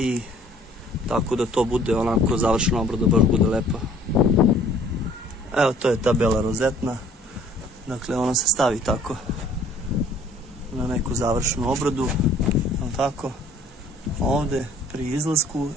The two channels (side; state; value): both; normal; correlation 0.55